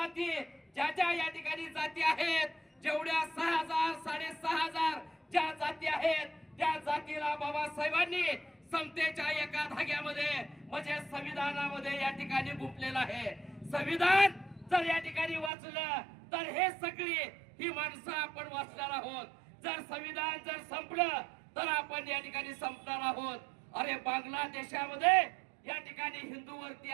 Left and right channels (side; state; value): left; drops out; at 15.5 s